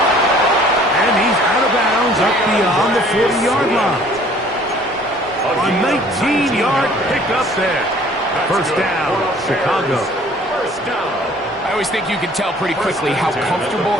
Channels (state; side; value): normal; both; correlation 0.54